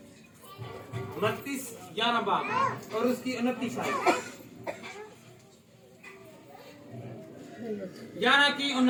11 बाब और उसकी 29 आयत 11 की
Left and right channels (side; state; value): both; identical; correlation 1.00